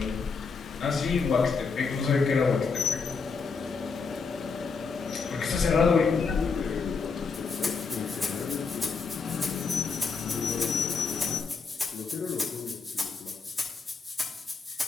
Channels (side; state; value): right; quieter; 5.0 dB